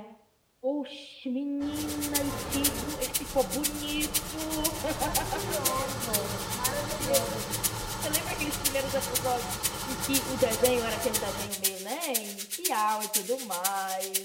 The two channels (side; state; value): both; identical; correlation 1.00